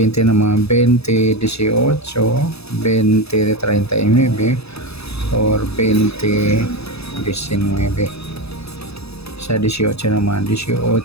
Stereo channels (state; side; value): late; right; 0.79 ms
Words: naman, 20, 18, 20, 39, or 20, 19. Sa 18 naman, 18,